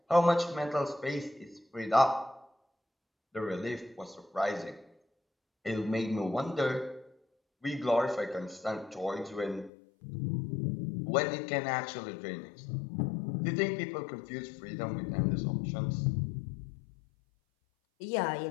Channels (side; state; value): right; drops out; at 9.7 s